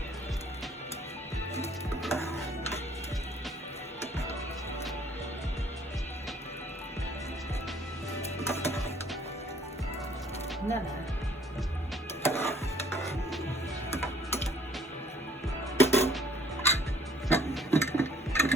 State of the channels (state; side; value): normal; both; correlation 0.59